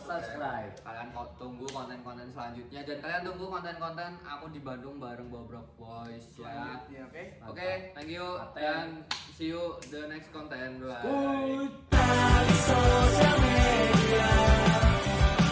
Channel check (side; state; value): both; identical; correlation 1.00